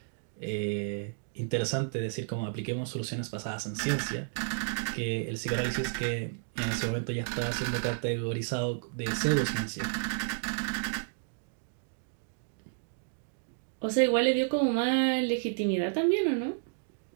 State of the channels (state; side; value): silent; left; digital silence